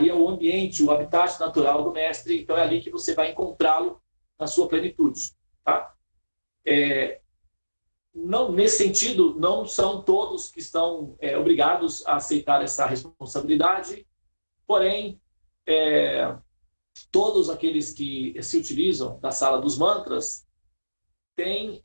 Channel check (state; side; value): inverted; both; correlation -1.00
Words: é o ambiente, o habitat natural do mestre, então é ali que você vai encontrá-lo na sua plenitude. Tá? Não, nesse sentido, não são todos que estão obrigados a aceitar essa responsabilidade, porém, todos aqueles que se utilizam da sala dos mantras têm